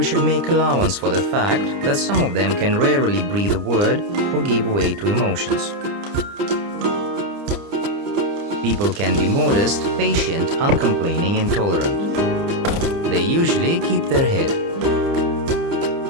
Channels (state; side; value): late; left; 30 ms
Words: should make allowance for the fact that some of them can rarely breathe a word or give way to emotions. People can be modest, patient, uncomplaining, and tolerant. They usually keep their head.